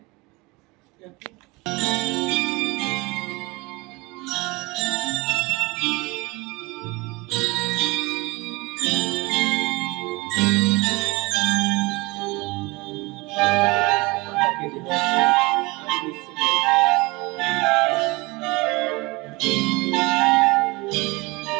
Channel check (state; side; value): quieter; left; 24.1 dB